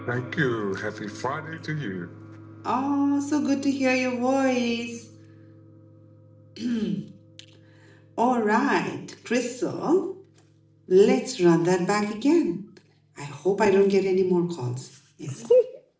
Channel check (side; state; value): both; identical; correlation 1.00